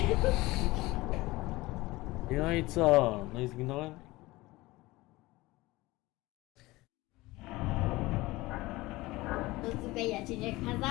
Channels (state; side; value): quieter; right; 20.2 dB